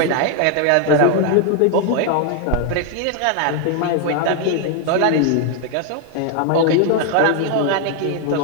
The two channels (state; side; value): different; both; correlation 0.01